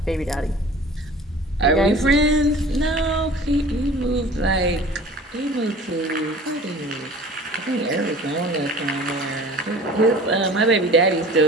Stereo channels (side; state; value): both; normal; correlation 0.44